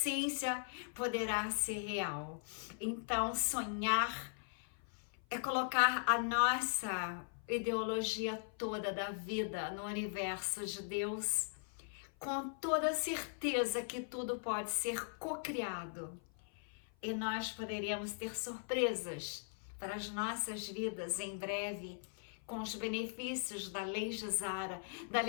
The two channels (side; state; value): right; silent; 51 dB below the other